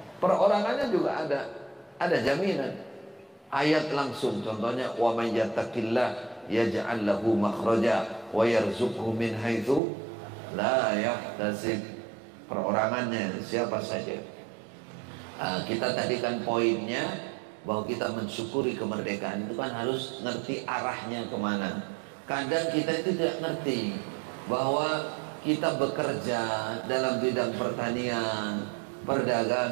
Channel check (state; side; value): drops out; left; at 9.8 s